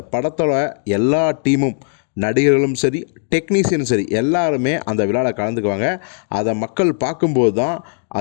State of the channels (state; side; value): silent; right; 65 dB below the other